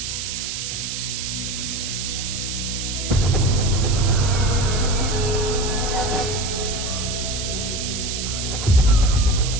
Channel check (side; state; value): right; noise; hiss, 4 dB below the sound